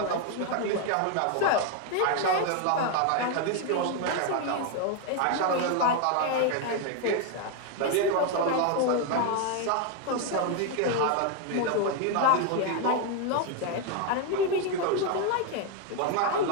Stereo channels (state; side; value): different; both; correlation 0.01